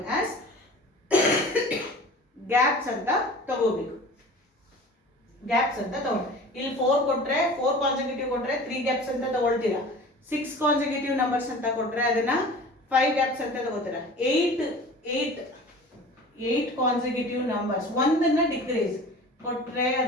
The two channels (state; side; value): normal; both; correlation 0.41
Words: as gaps ಅಂತ ತಗೋಬೇಕು. ಗ್ಯಾಪ್ಸ್ ಅಂತ ತಗೊಂಡು ಇಲ್ಲಿ 4 ಕೊಟ್ರೆ 4 ಕಾನ್ಸಿಕ್ಯೂಟಿವ್ ಕೊಟ್ರೆ 3 ಗ್ಯಾಪ್ಸ್ ಅಂತ ತಗೊಳ್ತೀರಾ. 6 ಕಾನ್ಸಿಕ್ಯೂಟಿವ್ ನಂಬರ್ಸ್ ಅಂತ ಕೊಟ್ರೆ ಅದನ್ನ 5 ಗ್ಯಾಪ್ಸ್ ಅಂತ ತಗೋತೀರಾ. 8 ಕಾನ್ಸಿಕ್ಯೂಟಿವ್ ನಂಬರ್ಸ್ ಒಂದನ್ನ ಡಿಕ್ರೀಸ್ ಕೊಟ್ರೆ